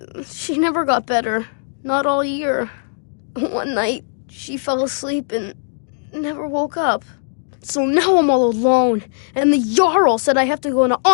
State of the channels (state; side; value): silent; right; digital silence